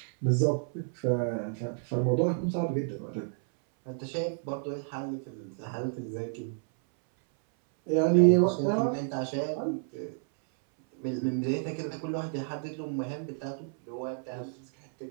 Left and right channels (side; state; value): left; silent; 58 dB below the other